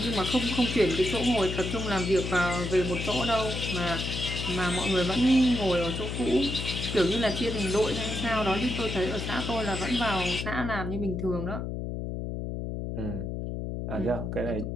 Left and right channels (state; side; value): noise; left; hum, 4 dB below the sound